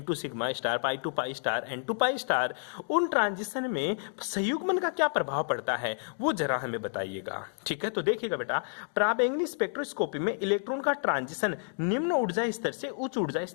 sigma star, pi to pi star, N2 pi star, उन ट्रांजिशन में संयुग्मन का क्या प्रभाव पड़ता है वो जरा हमें बताइएगा, ठीक है। तो देखिएगा बेटा, पराबैंगनी स्पेक्ट्रोस्कोपी में इलेक्ट्रॉन का ट्रांजिशन निम्न ऊर्जा स्तर से उच्च ऊर्जा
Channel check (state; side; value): silent; right; digital silence